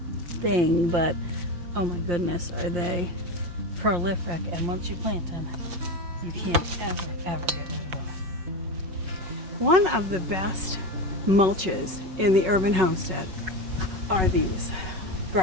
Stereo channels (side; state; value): left; late; 5.4 ms